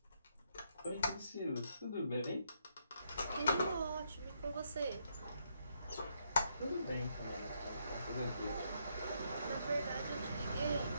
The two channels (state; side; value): inverted; both; correlation -0.75